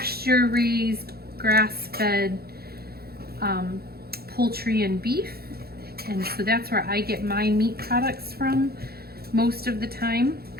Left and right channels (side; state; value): left; late; 0.45 ms